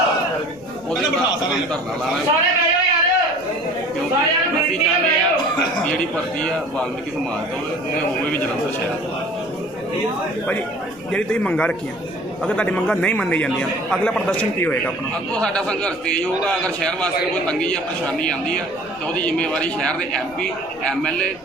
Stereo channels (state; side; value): noise; left; rumble, 26 dB below the sound